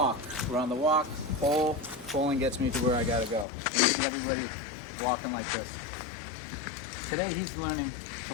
Pulling gets me to where I gotta go. And you see everybody walking like this. Today he's learning to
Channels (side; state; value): right; drops out; at 3.5 s